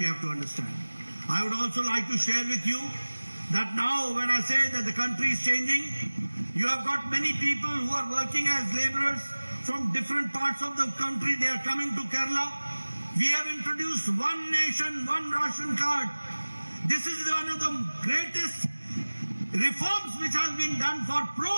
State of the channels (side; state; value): both; inverted; correlation -1.00